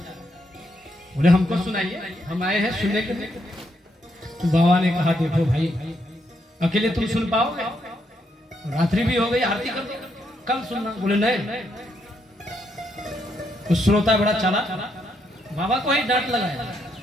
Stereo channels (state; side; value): normal; both; correlation 0.77